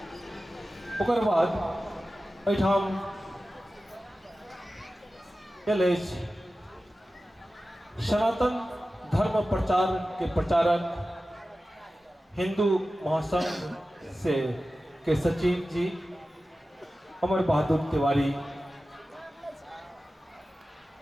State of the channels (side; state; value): both; normal; correlation 0.95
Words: ओकर बाद एठाम एलएच सनातन धर्म प्रचार के प्रचारक हिंदू महासंघ से के सचिव जी अमर बहादुर तिवारी